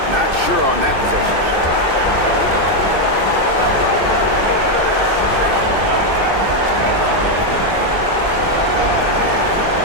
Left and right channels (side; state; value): left; late; 2.6 ms